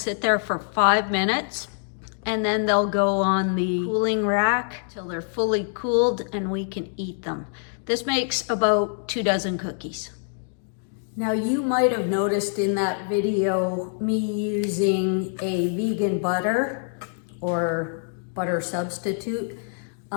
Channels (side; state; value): right; silent; digital silence